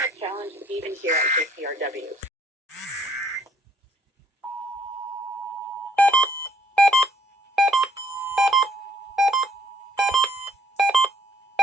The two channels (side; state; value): both; normal; correlation 0.64